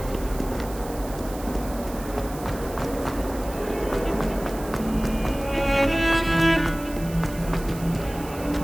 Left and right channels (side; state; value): right; noise; hiss, 16 dB below the sound